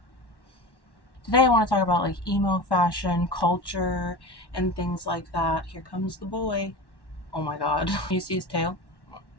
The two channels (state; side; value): late; right; 1.1 ms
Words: I want to talk about like emo fashion, culture, and things like that. Here comes the boy. Oh my god. You see his tail?